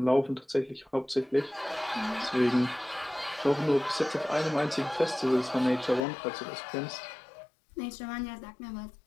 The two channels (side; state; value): right; drops out; at 6.0 s